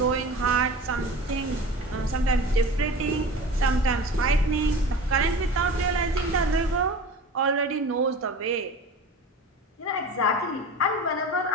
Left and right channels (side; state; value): both; normal; correlation 0.36